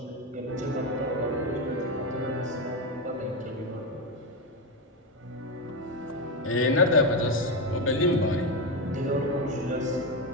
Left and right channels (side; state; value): both; normal; correlation 0.12